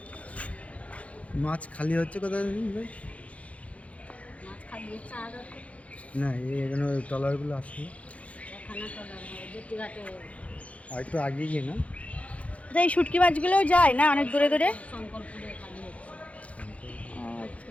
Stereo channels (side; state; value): right; late; 0.065 ms